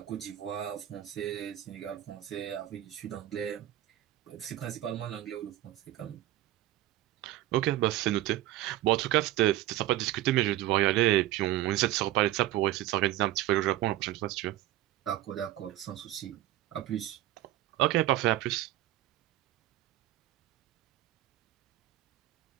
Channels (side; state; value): left; quieter; 14.7 dB